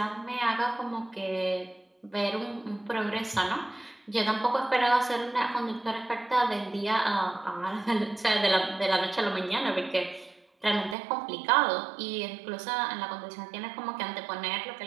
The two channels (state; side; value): drops out; left; at 11.0 s